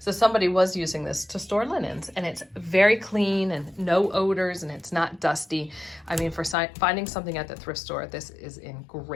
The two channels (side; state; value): right; drops out; at 6.6 s